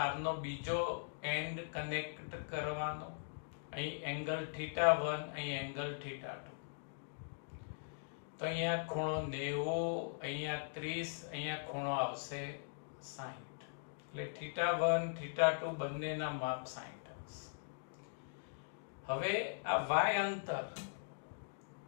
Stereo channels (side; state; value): right; silent; digital silence